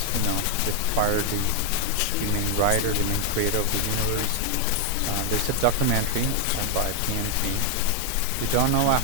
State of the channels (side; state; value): both; different; correlation 0.01